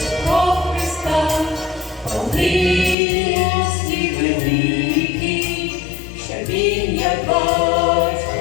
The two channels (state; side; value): drops out; right; at 3.0 s